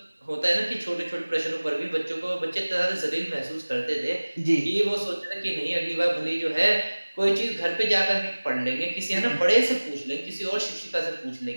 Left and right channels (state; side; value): inverted; both; correlation -1.00